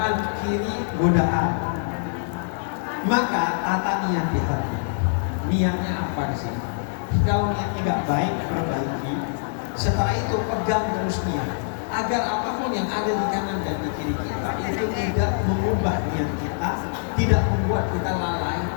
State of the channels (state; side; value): silent; right; digital silence